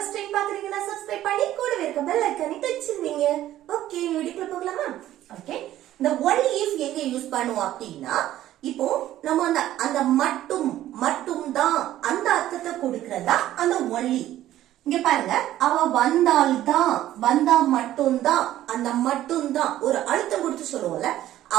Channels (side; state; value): left; quieter; 13.4 dB